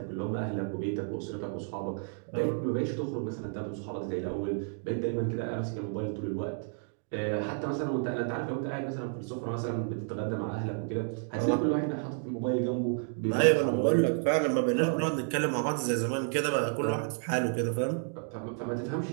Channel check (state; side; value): silent; left; 57 dB below the other